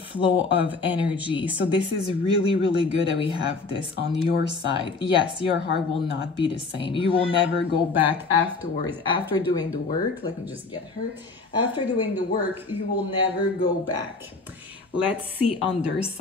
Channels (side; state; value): right; quieter; 4.0 dB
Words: of energy. So this is really, really good that we have this on your side. Yes, your heart will not be the same. You will never go back afterwards. After doing the work, let me just get her. After doing the work, you will never go back. Let's see on their